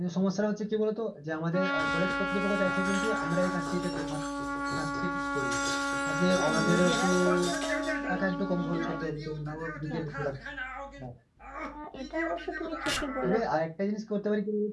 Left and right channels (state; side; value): identical; both; correlation 1.00